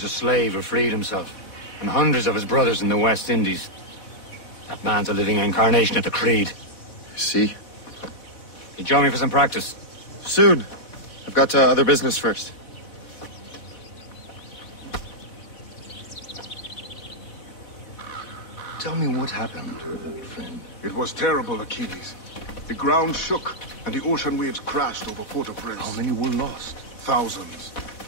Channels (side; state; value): right; late; 4.1 ms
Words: a slave who freed himself, and hundreds of his brothers in the West Indies. That man's a living incarnation of the Creed. See? He join me for some practice. Soon. I've got other business first. Tell me what happened, old friend. It was terrible, Achilles. The ground shook, and the ocean waves crashed over Port-au-Prince. How many were lost? Thousands.